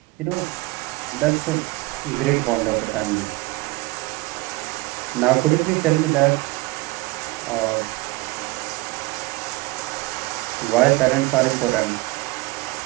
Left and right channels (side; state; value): left; quieter; 22.4 dB